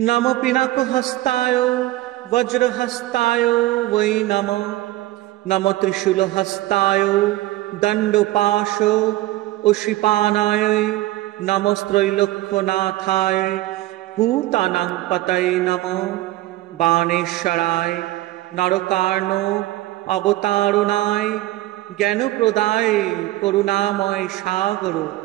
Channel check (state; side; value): quieter; left; 17.1 dB